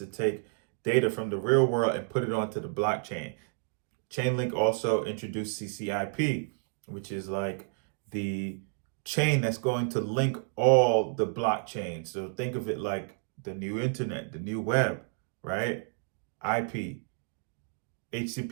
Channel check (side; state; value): left; silent; digital silence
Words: take data from the real world and put it onto the blockchain. Chainlink also introduced CCIP, which is like the chain that's going to link all the blockchains. So think of it like the new internet, the new web, right? IP,